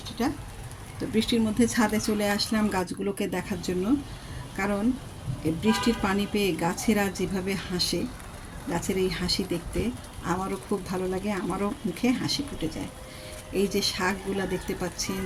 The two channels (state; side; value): identical; both; correlation 1.00